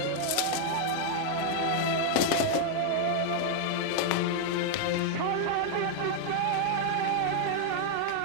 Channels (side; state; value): both; different; correlation 0.00